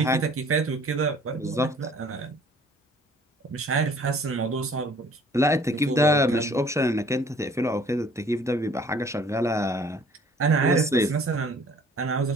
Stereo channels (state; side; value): normal; both; correlation 0.54